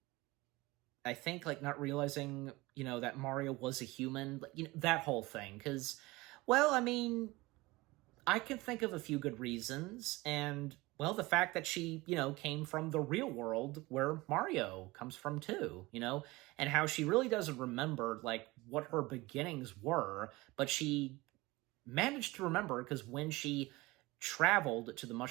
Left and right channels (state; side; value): quieter; left; 21.3 dB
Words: think, like, not realizing, that Mario was a human, that whole thing. Because, well, I mean, I can think of a few good reasons, and, well, the fact that she, came from the real world where Mario comes from too, and how she really doesn't remember, like, what her beginnings were, but she managed to remember because when she traveled to the